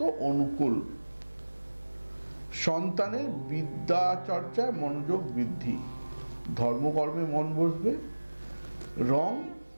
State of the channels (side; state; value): both; inverted; correlation -1.00